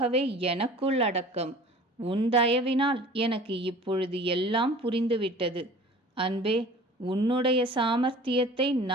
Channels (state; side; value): normal; both; correlation 0.44